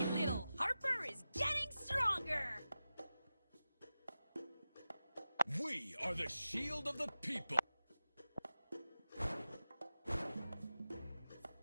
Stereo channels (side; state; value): both; inverted; correlation -0.93